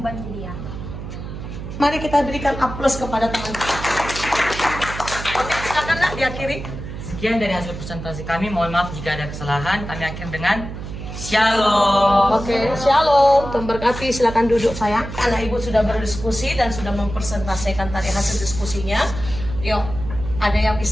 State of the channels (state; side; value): noise; right; hum, 9 dB below the sound